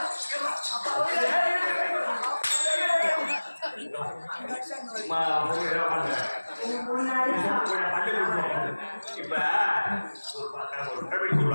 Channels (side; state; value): both; inverted; correlation -1.00